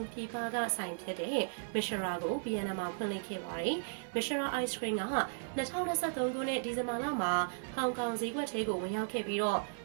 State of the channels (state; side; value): silent; left; 54 dB below the other